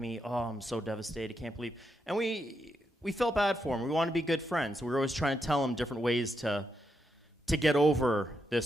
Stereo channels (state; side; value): normal; both; correlation 0.82